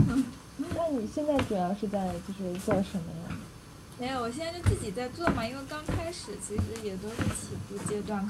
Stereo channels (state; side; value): identical; both; correlation 1.00